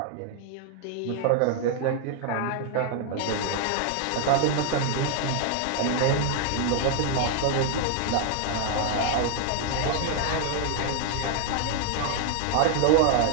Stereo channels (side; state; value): both; different; correlation 0.00